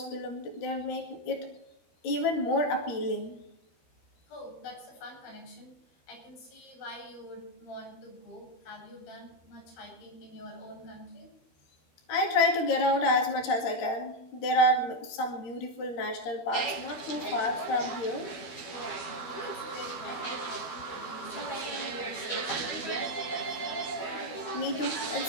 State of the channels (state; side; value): late; right; 12 ms